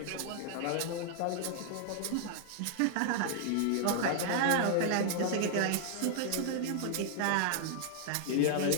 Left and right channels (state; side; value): different; both; correlation 0.00